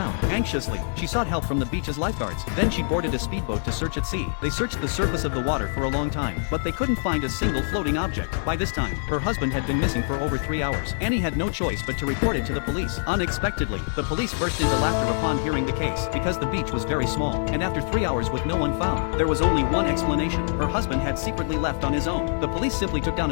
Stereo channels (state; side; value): silent; right; 62 dB below the other